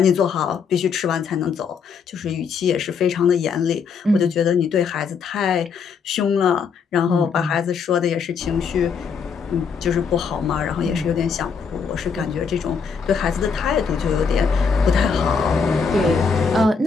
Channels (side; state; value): right; quieter; 5.8 dB